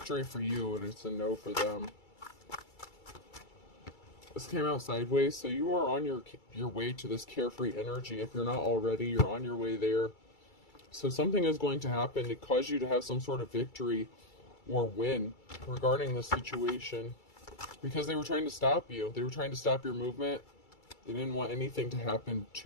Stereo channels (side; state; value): right; late; 2.3 ms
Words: for you and it's a no for them. This came out sideways, so you are on your way to this carefree energy. If you're not already, you're on your way there. So something is going to happen to cause you to have some sort of victory or win regarding the situation. Because they were trying to stop you. They were trying to stop your movement. They didn't want anything to happen